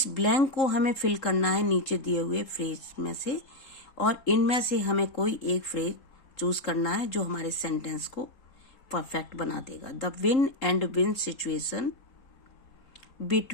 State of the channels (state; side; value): late; right; 3.8 ms